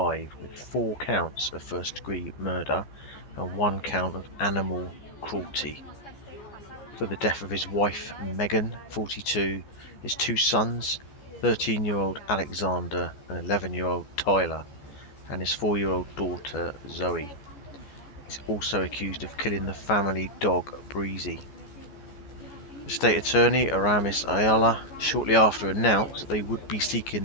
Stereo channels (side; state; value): right; late; 14 ms